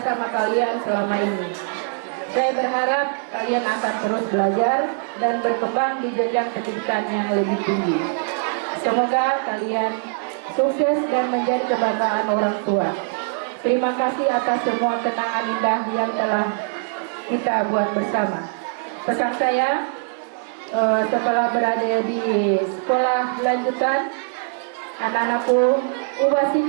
kalian selama ini. Saya berharap kalian akan terus belajar dan berkembang di jenjang pendidikan yang lebih tinggi. Semoga kalian sukses dan menjadi kebanggaan orang tua. Terima kasih atas semua kenangan indah yang telah kita buat bersama. Pesan saya, setelah berada di sekolah lanjutan, anak-anakku ubah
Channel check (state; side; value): silent; left; 60 dB below the other